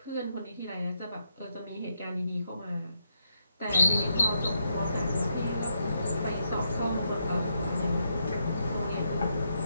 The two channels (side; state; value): both; inverted; correlation -0.80